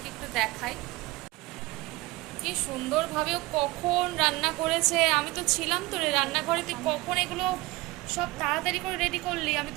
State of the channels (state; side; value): quieter; left; 20.9 dB